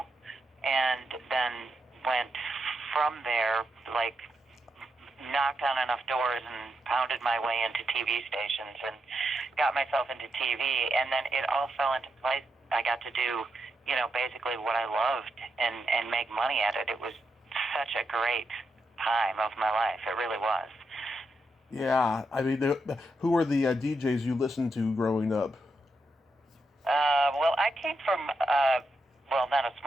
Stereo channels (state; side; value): normal; both; correlation 0.83